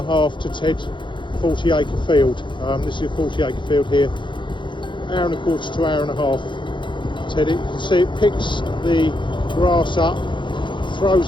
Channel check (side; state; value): right; late; 0.23 ms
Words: half to ted 40 acre field. This is a 40 acre field here. Hour and a quarter to hour and a half to ted it. You can see it picks the grass up,